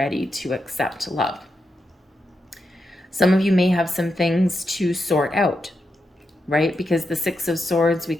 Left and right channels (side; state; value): both; normal; correlation 0.86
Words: to accept love. Some of you may have some things to sort out, right? Because the Six of Swords, we